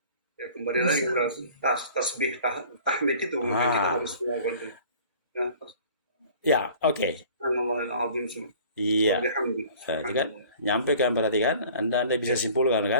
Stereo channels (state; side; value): inverted; both; correlation -0.48